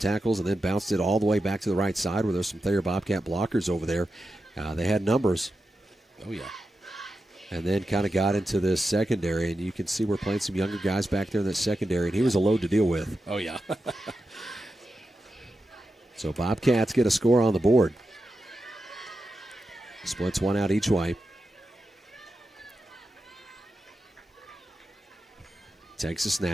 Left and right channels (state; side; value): normal; both; correlation 0.90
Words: and then bounced it all the way back to the right side where there's some Thayer Bobcat blockers over there. They had numbers. Oh, yeah. And then kind of got into this secondary, and you can see we're playing some younger guys back there in that secondary, and he was a load to deal with. Oh, yeah. So Bobcats get a score on the board. Splits one out each way. Takes a